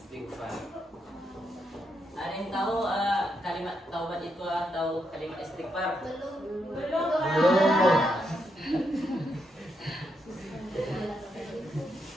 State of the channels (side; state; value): both; normal; correlation 0.80